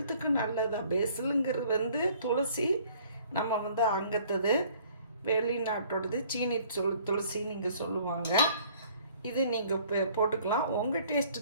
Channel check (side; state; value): both; inverted; correlation -0.56